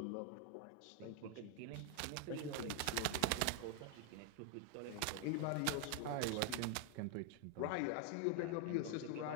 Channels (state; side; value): different; both; correlation 0.00